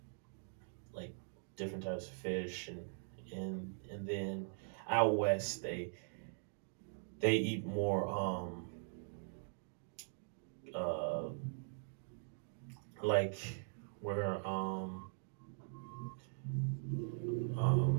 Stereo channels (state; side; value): silent; left; digital silence